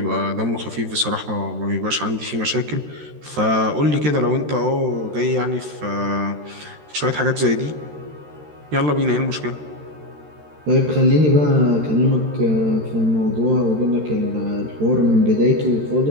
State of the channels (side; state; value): left; late; 13 ms